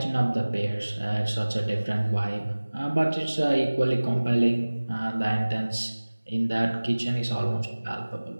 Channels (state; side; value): inverted; both; correlation -1.00